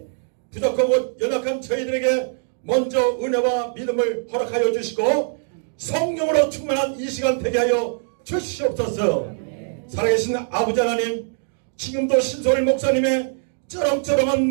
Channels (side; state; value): left; silent; digital silence